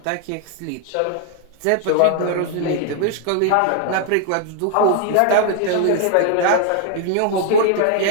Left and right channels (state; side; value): different; both; correlation 0.00